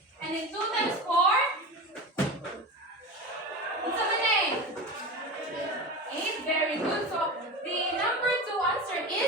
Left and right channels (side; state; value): both; normal; correlation 0.27